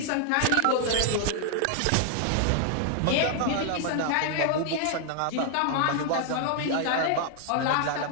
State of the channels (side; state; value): both; different; correlation 0.00